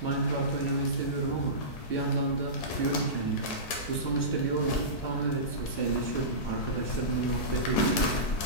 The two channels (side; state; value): right; late; 4.6 ms